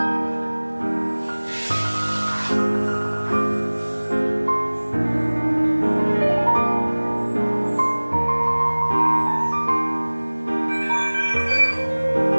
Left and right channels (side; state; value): both; inverted; correlation -1.00